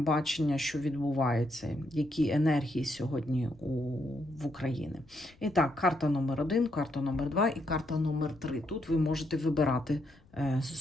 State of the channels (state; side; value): noise; left; rumble, 27 dB below the sound